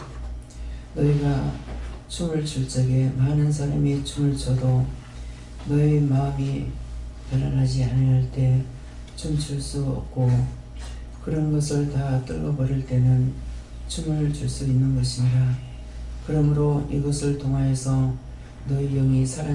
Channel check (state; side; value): identical; both; correlation 1.00